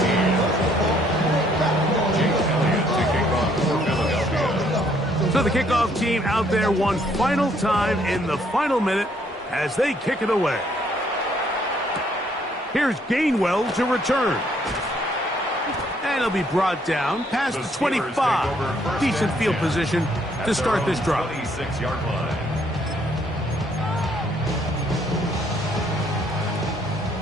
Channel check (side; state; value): both; normal; correlation 0.67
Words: So the kickoff team out there one final time in the final minute as they kick it away. Here's Gainwell to return. And he'll be brought down past the 25. Decent field position to start this drive. 26-yard line.